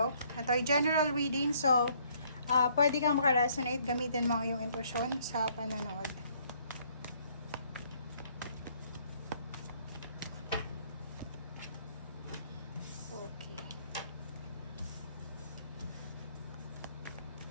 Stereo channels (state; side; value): inverted; both; correlation -0.65